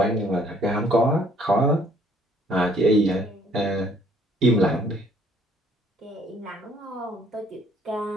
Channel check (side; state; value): both; normal; correlation 0.62